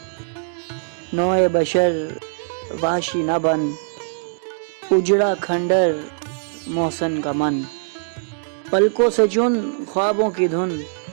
نوع بشر وحشی نہ بن، اجڑا کھنڈر محسن کا من، پلکوں سے چن خوابوں کی دھن،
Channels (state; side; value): silent; left; digital silence